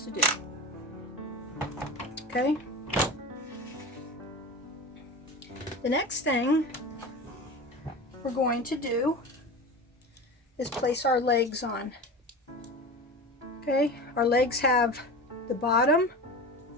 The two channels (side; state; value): both; normal; correlation 0.30